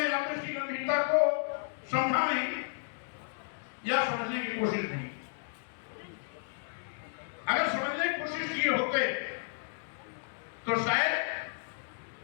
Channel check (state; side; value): silent; right; digital silence